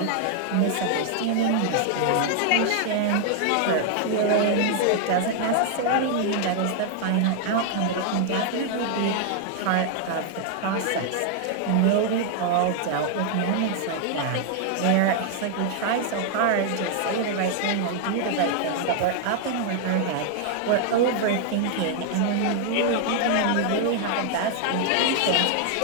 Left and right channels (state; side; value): different; both; correlation 0.00